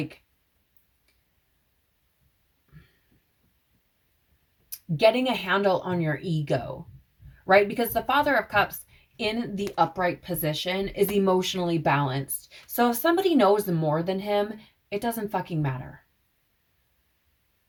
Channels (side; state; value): both; identical; correlation 1.00